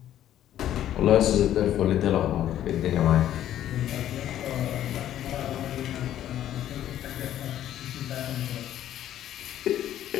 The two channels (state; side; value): quieter; right; 11.8 dB